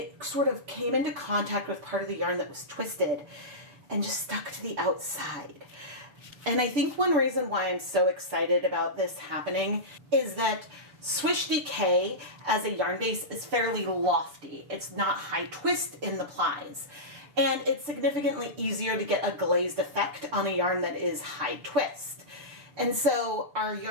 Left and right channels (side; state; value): left; late; 6.9 ms